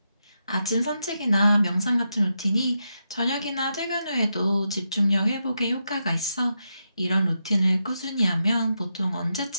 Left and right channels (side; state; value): both; inverted; correlation -0.85